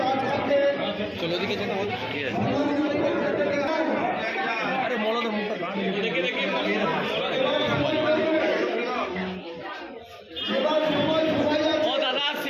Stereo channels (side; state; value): both; identical; correlation 1.00